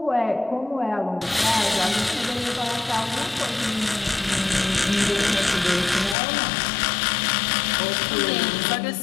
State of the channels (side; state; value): right; drops out; at 6.2 s